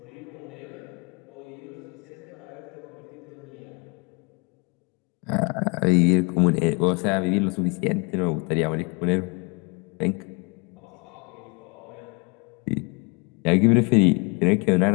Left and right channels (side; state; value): right; quieter; 31.3 dB